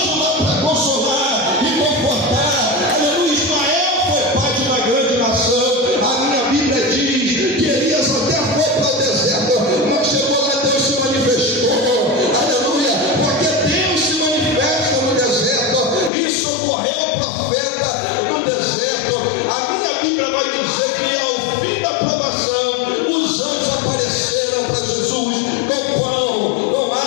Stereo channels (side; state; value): right; drops out; at 16.1 s